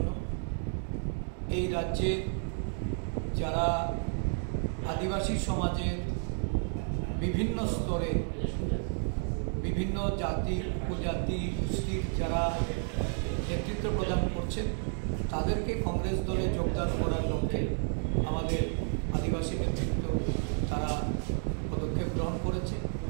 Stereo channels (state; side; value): silent; left; 57 dB below the other